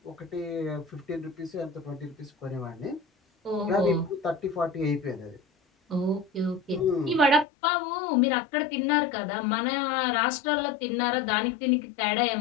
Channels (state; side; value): drops out; right; at 7.5 s